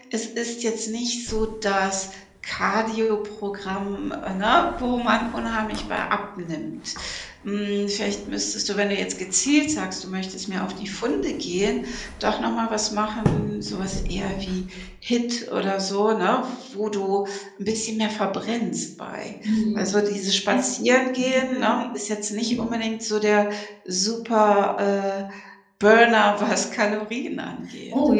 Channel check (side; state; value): both; identical; correlation 1.00